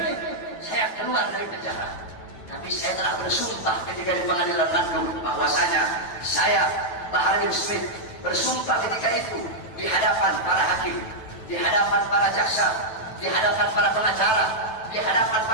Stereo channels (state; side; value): late; right; 9.0 ms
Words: saya keluar dari penjara, tapi saya telah bersumpah ketika di pengadilan Bandung bahwasanya saya Bahar bin Smith bersumpah ketika itu di hadapan para hakim, di hadapan para jaksa, di hadapan para pengacara, di hadapan